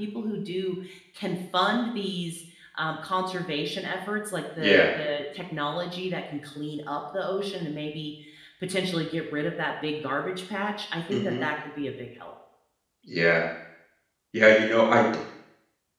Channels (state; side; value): identical; both; correlation 1.00